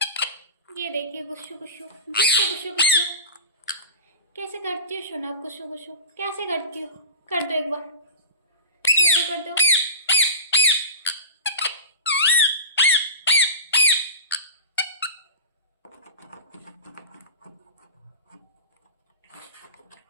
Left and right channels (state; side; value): inverted; both; correlation -0.31